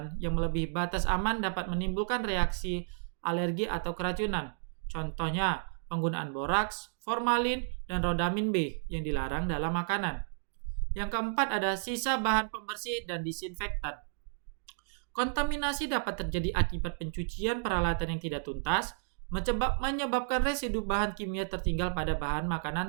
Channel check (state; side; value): silent; left; digital silence